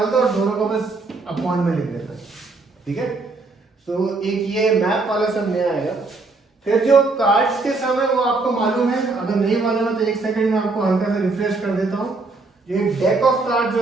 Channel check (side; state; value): left; quieter; 3.6 dB